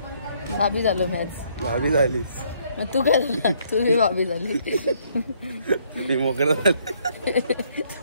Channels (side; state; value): both; inverted; correlation -0.67